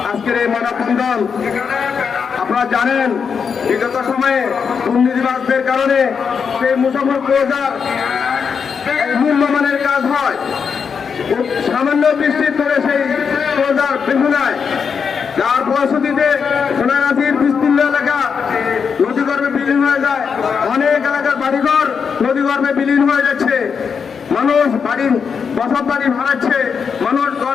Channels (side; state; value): right; quieter; 6.3 dB